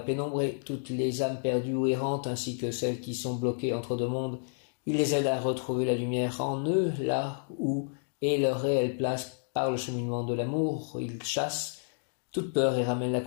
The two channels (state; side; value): silent; right; digital silence